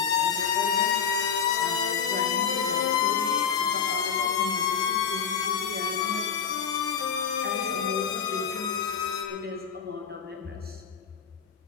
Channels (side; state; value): right; quieter; 7.2 dB